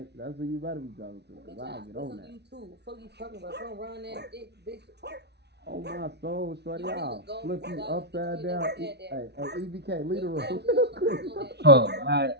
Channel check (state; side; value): late; left; 0.49 ms